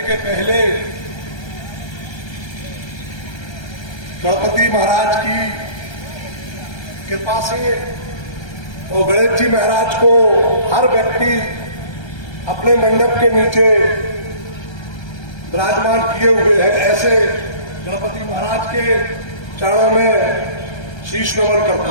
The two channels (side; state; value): right; late; 1.3 ms